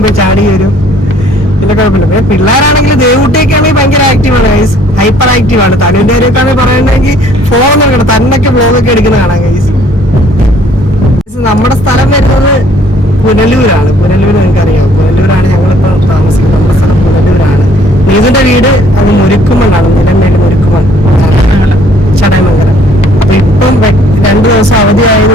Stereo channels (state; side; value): normal; both; correlation 0.59